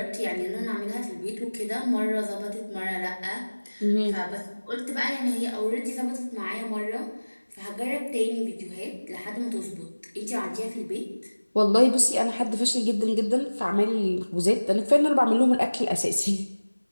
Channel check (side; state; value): both; inverted; correlation -1.00